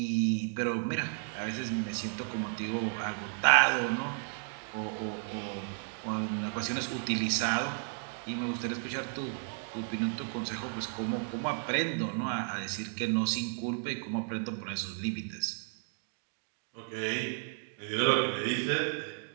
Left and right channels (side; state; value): left; silent; 56 dB below the other